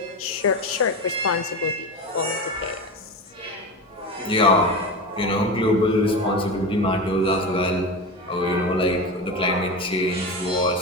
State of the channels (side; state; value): both; normal; correlation 0.23